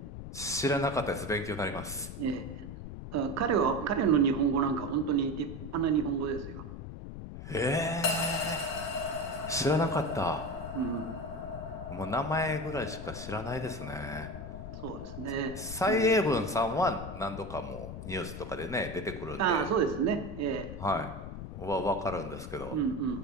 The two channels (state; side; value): noise; left; rumble, 9 dB below the sound